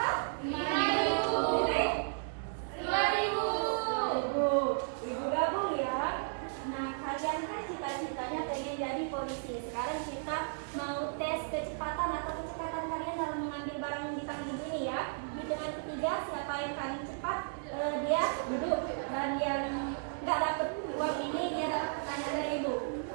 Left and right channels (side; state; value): left; silent; 55 dB below the other